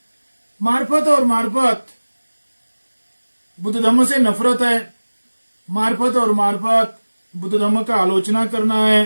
मार्फत बुद्ध धम्म से नफरत है, मार्फत बुद्ध धम्म का आलोचना करना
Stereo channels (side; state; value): both; inverted; correlation -1.00